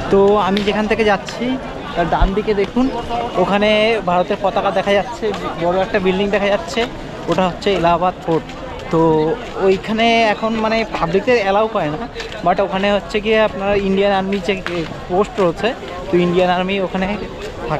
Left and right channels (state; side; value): identical; both; correlation 1.00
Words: তো আমি যেখান থেকে যাচ্ছি তার ডান দিকে দেখুন ওখানে ভারতের পতাকা দেখা যাচ্ছে, বড় একটা বিল্ডিং দেখা যাচ্ছে, ওটা হচ্ছে এলাহাবাদ ফোর্ট। তো ওইখানে এখন মানে পাবলিকদের অ্যালাউ করে না, বাট ওখানে হচ্ছে গিয়ে আপনার ইন্ডিয়ান আর্মি যে পোস্ট রয়েছে, তো ইন্ডিয়ান আর্মি ওখানে